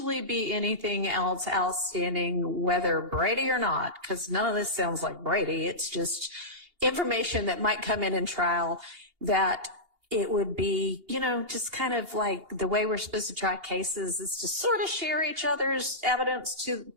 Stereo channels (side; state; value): left; late; 2.8 ms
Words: be anything else outstanding, whether Brady or not, because none of this sounds like Brady. It's just information that might come in trial that it would be, you know, just kind of like the way we're supposed to try cases is to sort of share each other's evidence to,